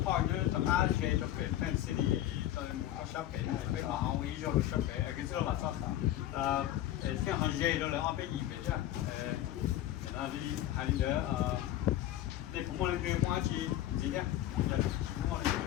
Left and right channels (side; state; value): right; quieter; 13.1 dB